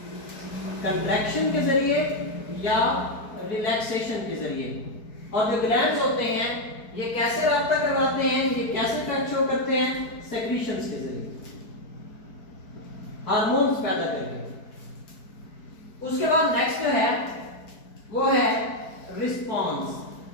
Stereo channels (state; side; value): late; right; 4.6 ms